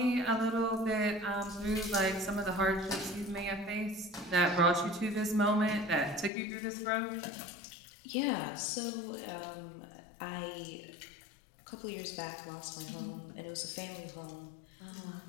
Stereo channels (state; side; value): drops out; right; at 6.3 s